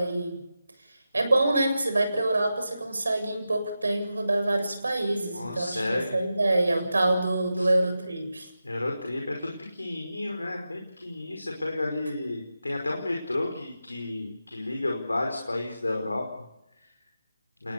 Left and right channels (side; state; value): both; inverted; correlation -0.90